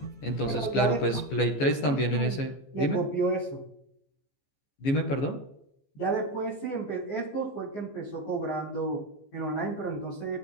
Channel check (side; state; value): right; late; 14 ms